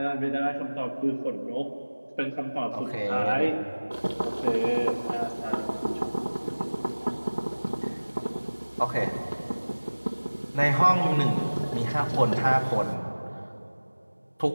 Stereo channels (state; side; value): inverted; both; correlation -1.00